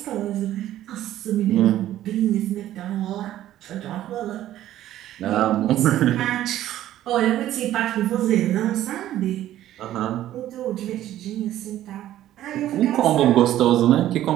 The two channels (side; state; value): left; quieter; 13.1 dB